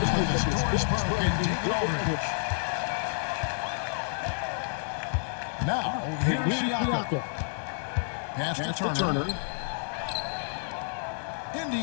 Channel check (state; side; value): silent; right; digital silence